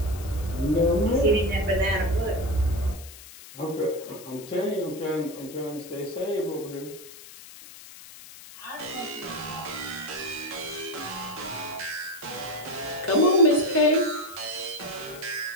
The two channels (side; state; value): left; noise; hiss, 17 dB below the sound